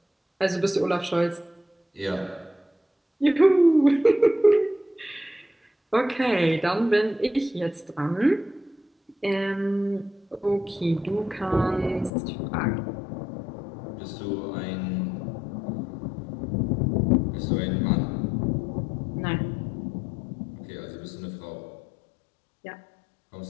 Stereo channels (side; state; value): right; drops out; at 12.1 s